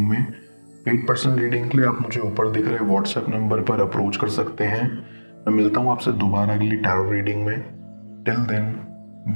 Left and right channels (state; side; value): inverted; both; correlation -1.00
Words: में। पेड पर्सनल रीडिंग के लिए आप मुझे ऊपर दिख रहे व्हाट्सएप नंबर पर अप्रोच कर सकते हैं। मैं मिलता हूँ आपसे दोबारा अगली टैरो रीडिंग में। Till then,